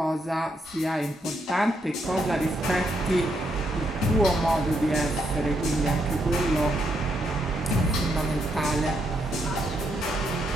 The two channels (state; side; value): normal; both; correlation 0.77